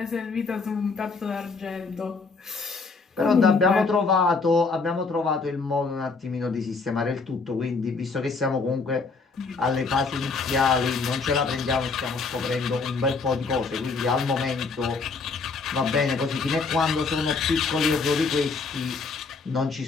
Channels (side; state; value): right; quieter; 4.4 dB